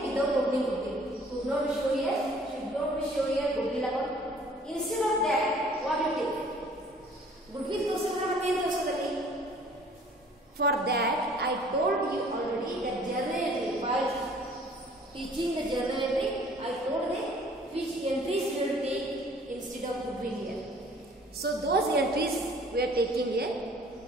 without opening goodwill. Should not be show here goodwill account. Instead of that, what you take? Goodwill ತೋರಿಸಿದ್ರೆ ಮತ್ತೆ ಏನು ತೋರಿಸೋದಲ್ಲಿ? For that, I told you already that journal entry, while teaching the journal entry, I told them which entries we will take instead of goodwill here. So those entries we are taking here,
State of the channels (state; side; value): normal; both; correlation 0.54